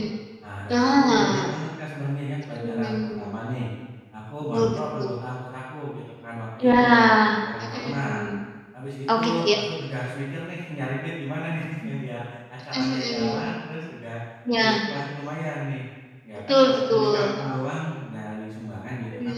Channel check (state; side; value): identical; both; correlation 1.00